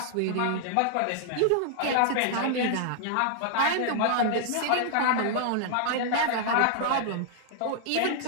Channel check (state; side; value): different; both; correlation -0.01